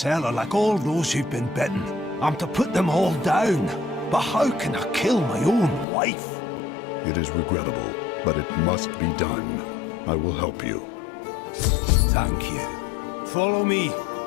like all those who've been bitten. I'm to put them all down. But how can I kill my own wife? It is regrettable, but it must be done. I will help you. Thank you. Follow me.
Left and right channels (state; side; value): drops out; right; at 5.9 s